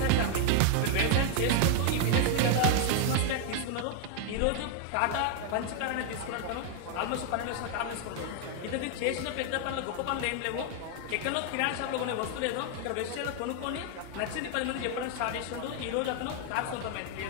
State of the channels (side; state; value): both; different; correlation 0.00